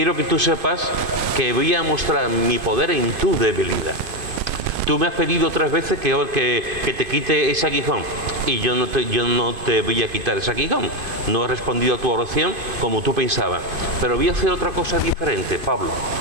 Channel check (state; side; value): late; left; 2.5 ms